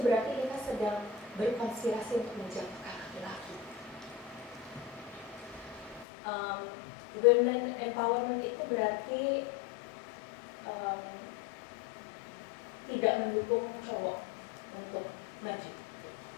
kita sedang berkonspirasi untuk menjatuhkan laki-laki. Women empowerment itu berarti tidak mendukung cowok untuk maju,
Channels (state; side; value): drops out; right; at 6.1 s